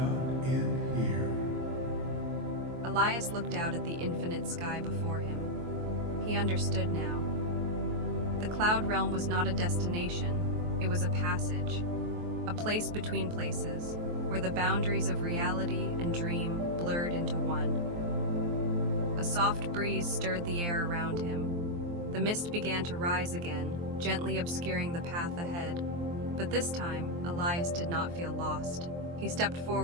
end here. Elias looked out at the infinite sky before him. He understood now. The cloud realm was not a destination, it was a passage, a place between places, where the boundaries of reality and dream blurred into one. A soft breeze stirred the air around him. The mist began to rise again, gently obscuring the path ahead. But this time, Elias did not feel lost. He stepped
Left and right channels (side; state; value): left; late; 23 ms